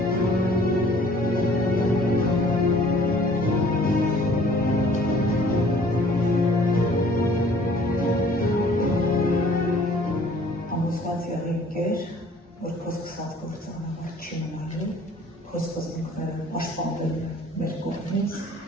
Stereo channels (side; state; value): both; normal; correlation 0.54